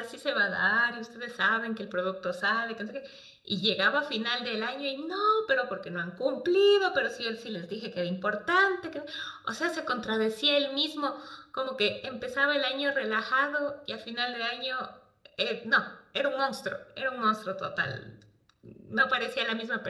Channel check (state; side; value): identical; both; correlation 1.00